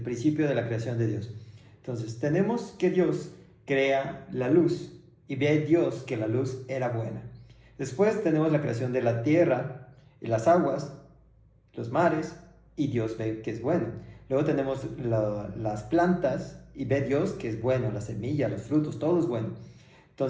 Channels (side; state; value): both; identical; correlation 1.00